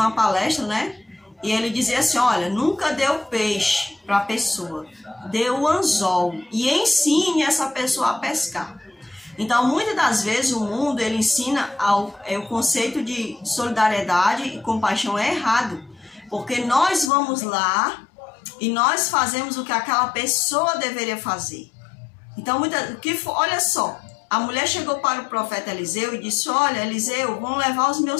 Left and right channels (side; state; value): right; drops out; at 17.1 s